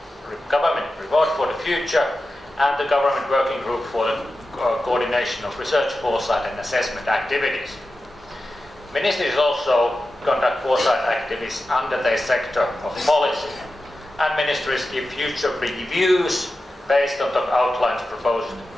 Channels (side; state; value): both; normal; correlation 0.93